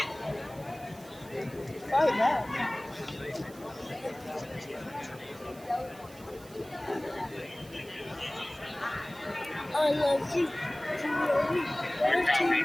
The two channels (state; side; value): noise; right; hiss, 21 dB below the sound